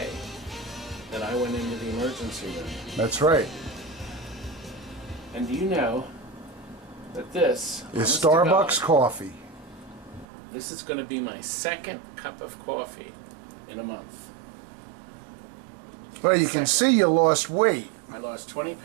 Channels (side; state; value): left; drops out; at 10.2 s